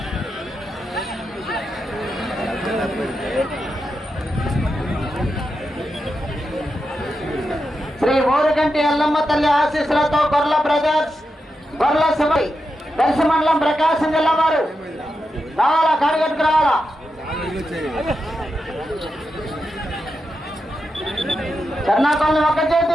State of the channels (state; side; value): normal; both; correlation 0.87